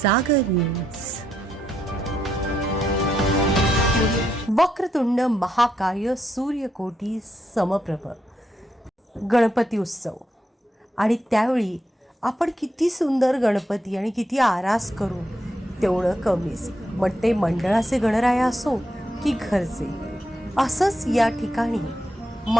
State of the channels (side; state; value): both; normal; correlation 0.81